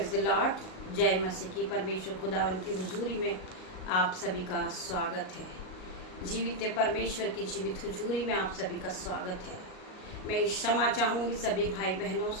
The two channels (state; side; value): late; right; 38 ms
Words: the Lord. जय मसीह की। परमेश्वर खुदावन की हुजूरी में आप सभी का स्वागत है। जीवित परमेश्वर की जीवित हुजूरी में आप सभी का स्वागत है। मैं क्षमा चाहूँगी सभी भाई बहनों